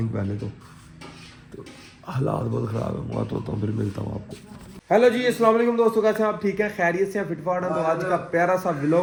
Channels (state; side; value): identical; both; correlation 1.00